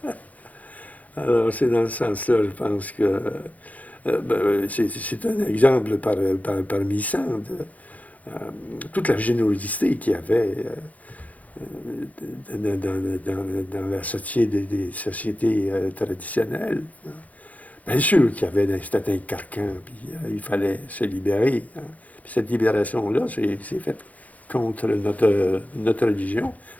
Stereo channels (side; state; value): right; late; 0.074 ms